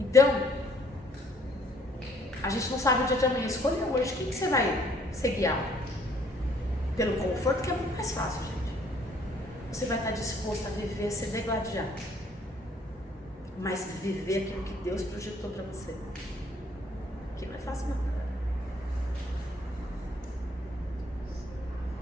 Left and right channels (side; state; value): both; normal; correlation 0.62